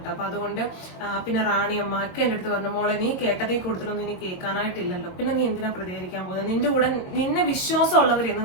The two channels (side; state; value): right; late; 22 ms